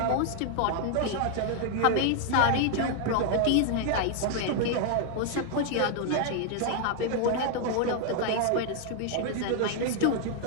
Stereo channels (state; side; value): different; both; correlation 0.00